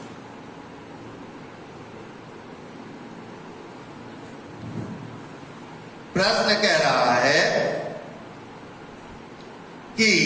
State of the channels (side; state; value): both; identical; correlation 1.00